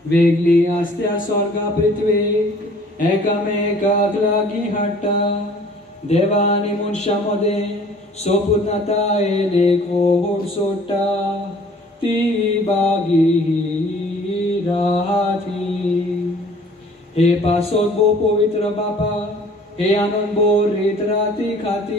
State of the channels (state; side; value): normal; both; correlation 0.53